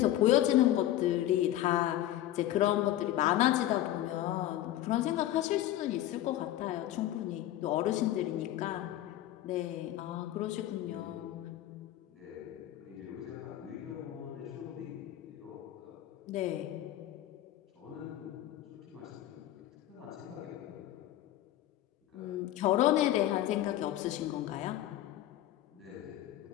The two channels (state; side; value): quieter; right; 13.5 dB